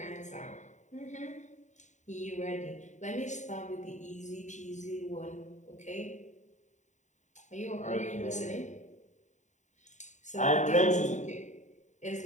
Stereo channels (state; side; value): late; right; 0.35 ms